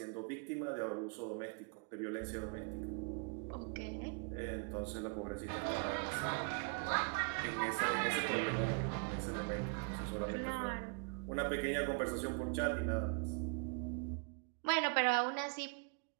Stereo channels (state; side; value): quieter; left; 38.5 dB